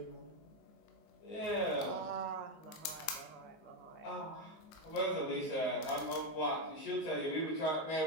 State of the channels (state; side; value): late; right; 19 ms